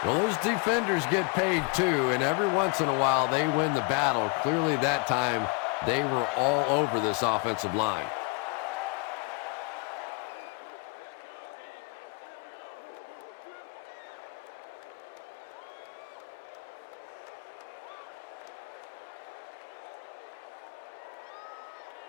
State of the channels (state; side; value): quieter; right; 29.1 dB